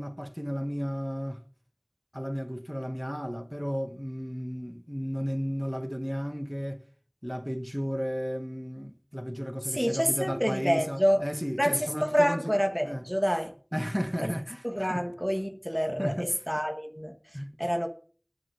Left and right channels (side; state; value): both; identical; correlation 1.00